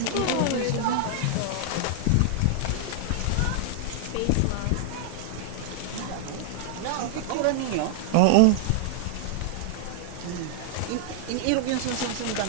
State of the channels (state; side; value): different; both; correlation -0.01